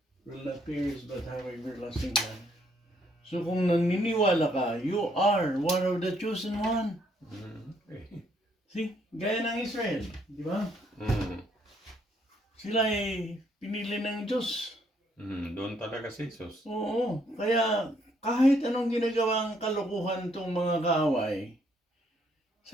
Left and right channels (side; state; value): both; normal; correlation 0.70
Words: will not perish but have everlasting life. So kung naniniwala ka, you are one of the chosen one. Mm. Okay. See, gaya ng Israel, di ba? Mm. Sila ay pinili ng Diyos. Mm. Doon talaga si Jesus. Oo, kaya kahit anong ginagawang kalokohan tong mga kaaway,